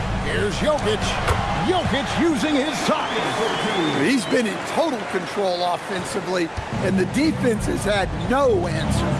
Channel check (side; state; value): both; identical; correlation 1.00